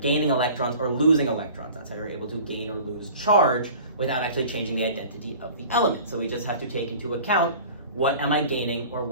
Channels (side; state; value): both; inverted; correlation -0.43